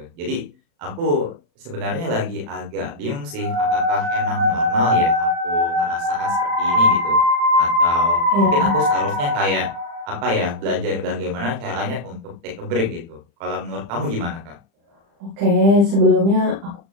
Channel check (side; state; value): left; late; 35 ms